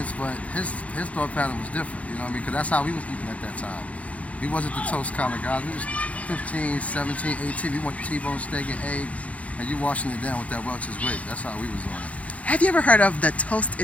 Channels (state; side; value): late; right; 0.066 ms